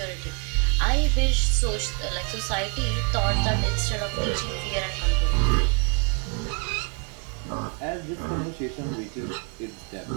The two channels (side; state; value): left; quieter; 34.2 dB